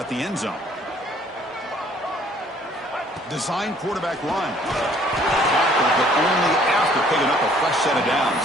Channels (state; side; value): normal; both; correlation 0.59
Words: the end zone. Design quarterback run. But only after picking up a fresh set of downs.